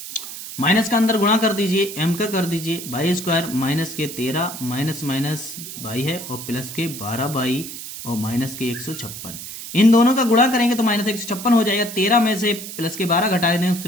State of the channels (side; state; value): right; noise; hiss, 10 dB below the sound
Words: माइनस का अंदर गुणा कर दीजिए, m का कर दीजिए, बाई स्क्वायर माइनस के 13 माइनस माइनस बाई है और प्लस के 12 बाई और माइनस के 156। इन दोनों का गुणा करेंगे तो माइनस 156 हो जाएगा। 13 में से प्लस के 12 घटा देंगे,